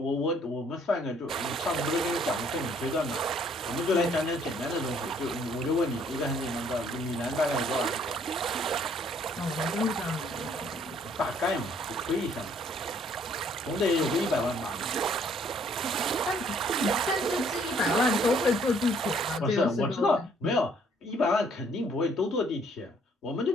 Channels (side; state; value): both; normal; correlation 0.63